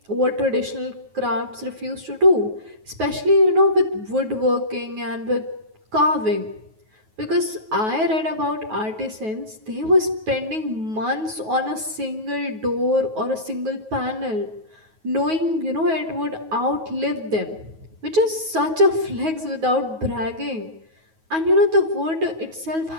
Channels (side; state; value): left; late; 9.3 ms